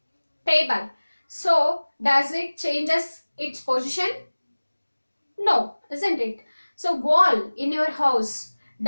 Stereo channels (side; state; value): both; inverted; correlation -1.00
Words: table. So does it changes its position? No, isn't it? So wall in your house,